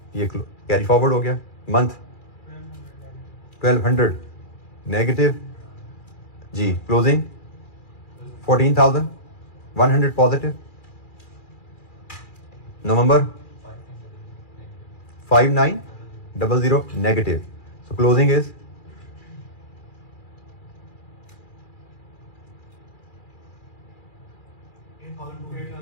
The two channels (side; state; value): right; late; 2.4 ms